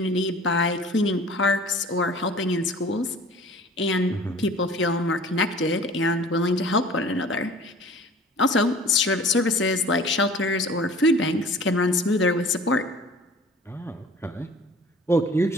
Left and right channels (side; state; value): both; normal; correlation 0.46